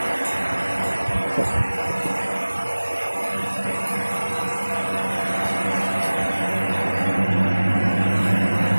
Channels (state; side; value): inverted; both; correlation -1.00